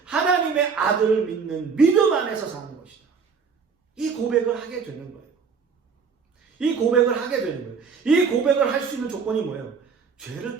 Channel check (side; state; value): left; quieter; 5.7 dB